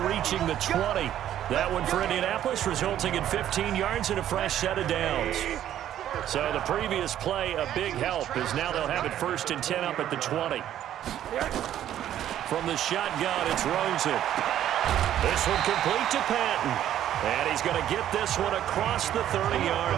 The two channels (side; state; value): left; quieter; 11.4 dB